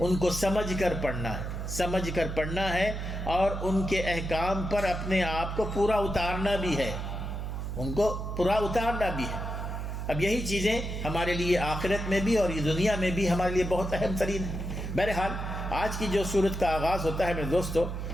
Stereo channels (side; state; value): right; noise; hum, 4 dB below the sound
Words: کو سمجھ کر پڑھنا ہے اور ان کے احکام پر اپنے آپ کو پورا اتارنا بھی ہے، اب یہی چیزیں ہمارے لیے آخرت میں بھی اور یہ دنیا میں بھی ہمارے لیے بہت اہم ترین ہے. بہرحال آج کی جو سورت کا آغاز ہوتا ہے میرے دوستو،